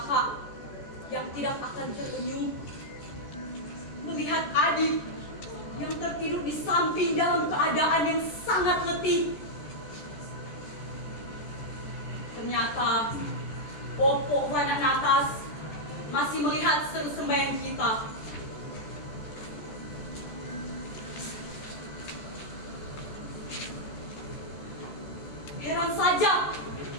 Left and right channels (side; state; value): right; late; 14 ms